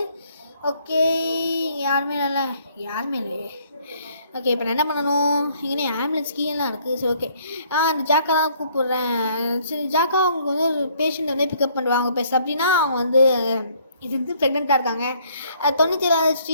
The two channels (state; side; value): inverted; both; correlation -0.63